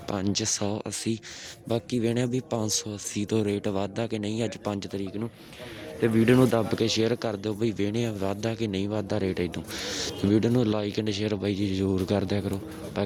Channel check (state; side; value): identical; both; correlation 1.00